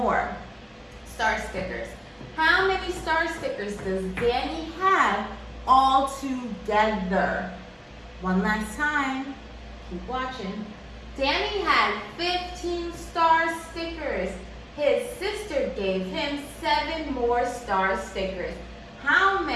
star stickers. How many star stickers does Danny have all together? One last time. Keep watching. Danny had 15 star stickers. His sister gave him 7 more star stickers. How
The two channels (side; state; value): both; identical; correlation 1.00